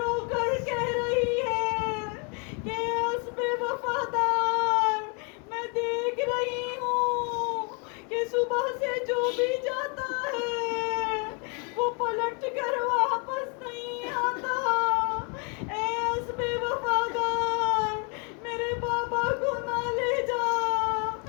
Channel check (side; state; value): right; quieter; 34.7 dB